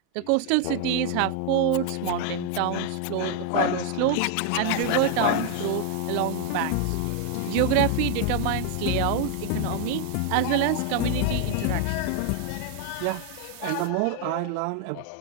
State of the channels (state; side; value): different; both; correlation 0.00